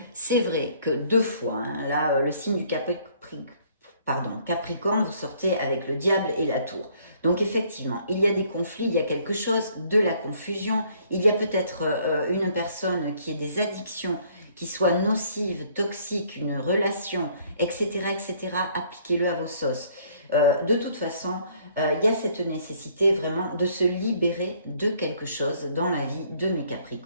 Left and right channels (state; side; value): inverted; both; correlation -0.62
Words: c'est vrai que 2 fois, hein, là, le signe du Capricorne, vous sortez avec le diable et la tour. Donc, effectivement, il y a des conflits, il y a quelque chose, de la confusion. Il y a peut-être une personne qui ait des addictions, qui soit nocive, toxique, une relation, etc., etc. Appliquez-le à vos sauces. De toute façon, il y a cette nécessité vraiment de se libérer de quelque chose dans la vie de mes